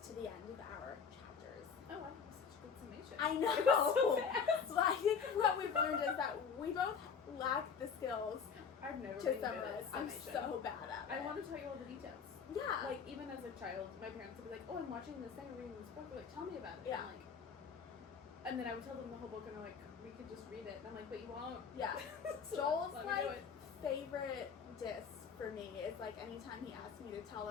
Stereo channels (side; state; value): right; quieter; 6.3 dB